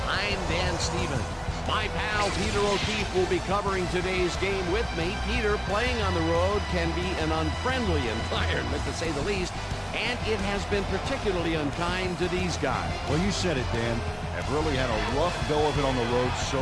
I'm Dan Stevens. My pal Peter O'Keefe will be covering today's game with me. Peter, playing on the road can be an unfriendly environment, to say the least, and it has been particularly unkind to these guys. Well, you said it, Dan. Have really had a rough go of it on the road so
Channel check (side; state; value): both; identical; correlation 1.00